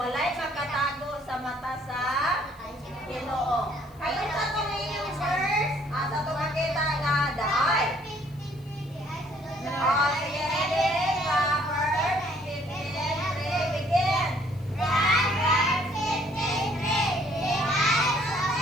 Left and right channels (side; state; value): left; noise; hiss, 29 dB below the sound